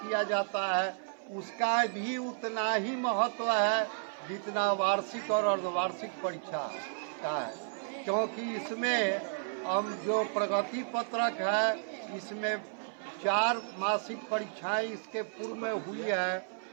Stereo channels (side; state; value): left; silent; 56 dB below the other